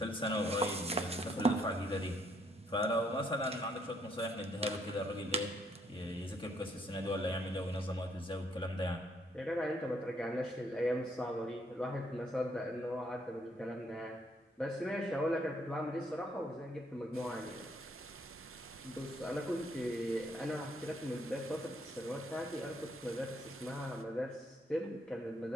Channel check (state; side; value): normal; both; correlation 0.69